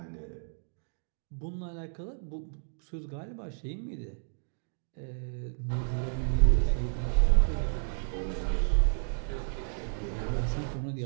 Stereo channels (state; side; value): silent; left; digital silence